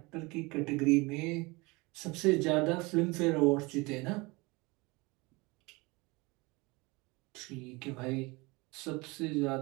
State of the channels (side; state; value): left; quieter; 24.9 dB